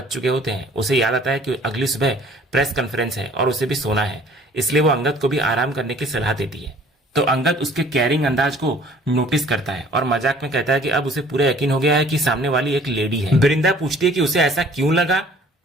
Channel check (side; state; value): both; normal; correlation 0.53